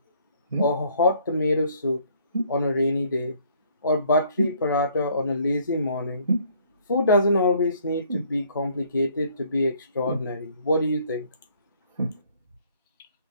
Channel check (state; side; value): inverted; both; correlation -0.62